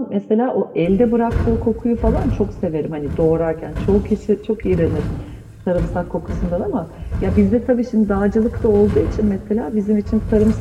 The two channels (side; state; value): both; identical; correlation 1.00